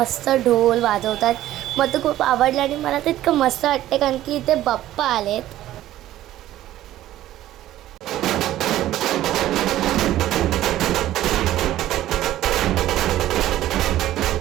ढोल वाजवतात. मला तर खूप आवडलं आणि मला तर इतकं मस्त वाटते कारण की इथे बाप्पा आलेत.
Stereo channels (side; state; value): left; quieter; 13.9 dB